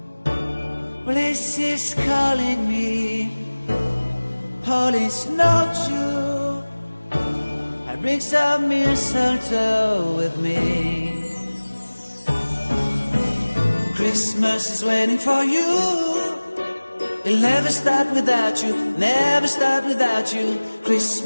Well, this is calling me, holy snowshoe. I bring some mistletoe with me. Christmas is waiting for you. It'll never start without you, never start without you.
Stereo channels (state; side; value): inverted; both; correlation -1.00